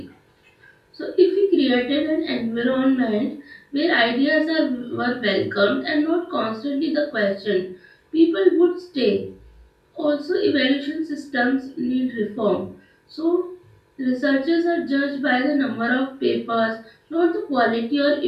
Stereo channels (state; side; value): identical; both; correlation 1.00